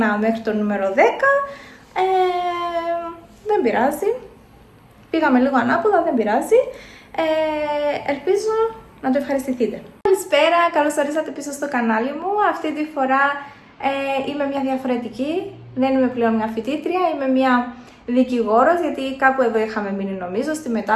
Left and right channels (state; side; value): identical; both; correlation 1.00